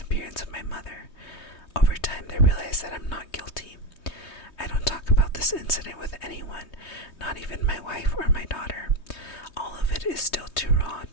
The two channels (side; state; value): right; late; 3.2 ms